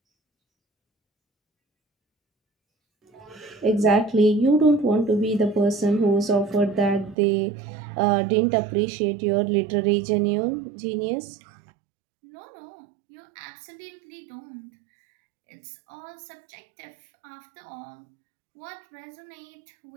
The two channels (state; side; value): drops out; left; at 7.2 s